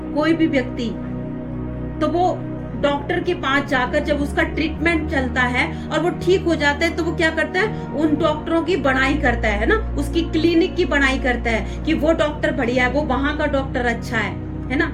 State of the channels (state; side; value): identical; both; correlation 1.00